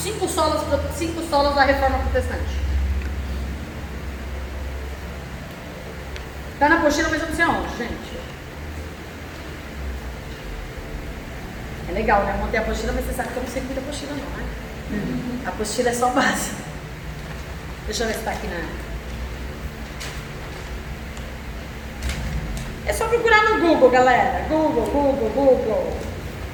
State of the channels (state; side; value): identical; both; correlation 1.00